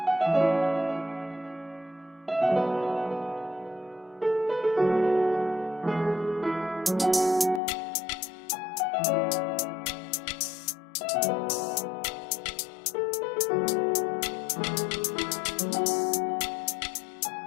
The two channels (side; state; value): right; drops out; at 7.6 s